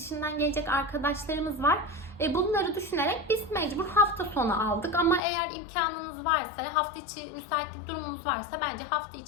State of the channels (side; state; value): right; drops out; at 5.2 s